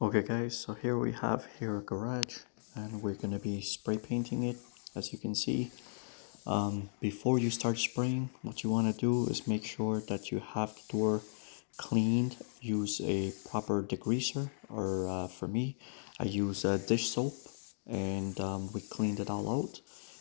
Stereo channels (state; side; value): silent; right; digital silence